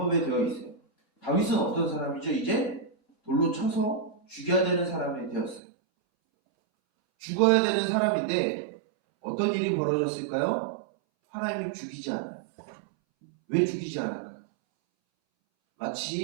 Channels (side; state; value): left; drops out; at 5.6 s